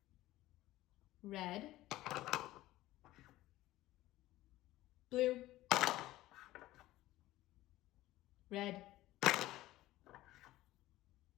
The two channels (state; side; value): quieter; right; 16.4 dB